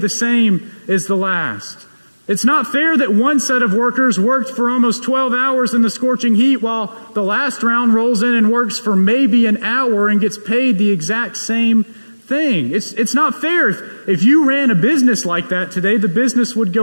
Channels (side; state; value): both; inverted; correlation -1.00